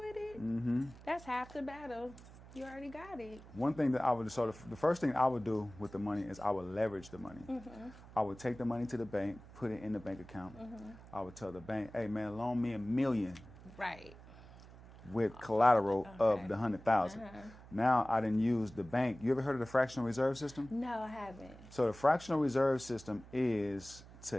it, that's half the battle. You already got it. One thing that the first thing I would do with the money is I would leverage the money. I would take the money to the bank, put it in the bank account. I would tell the bank, hey man, loan me $1 million. Right. With collateral of the 100,000. Now I didn't use the bank. You ever heard of the fractional reserve system? No, I haven't. So the fractional reserve system is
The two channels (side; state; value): right; noise; hum, 19 dB below the sound